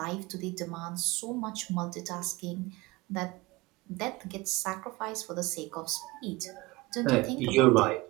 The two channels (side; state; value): left; quieter; 21.6 dB